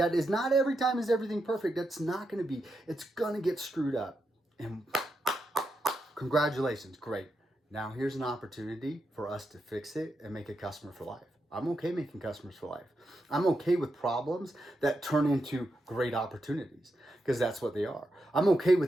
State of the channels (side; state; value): both; normal; correlation 0.85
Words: is not every time is everything perfect. That's not going to be. It's going to get screwed up. And congratulations, great. Now here's an opportunity for us to fix it and make a customer for life. I'm okay making customers for life. I'm okay with problems that turn into great opportunities because that's what they are. I'm okay